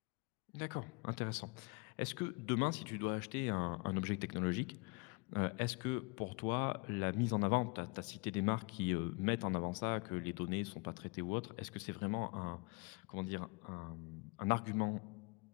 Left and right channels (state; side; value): quieter; right; 29.7 dB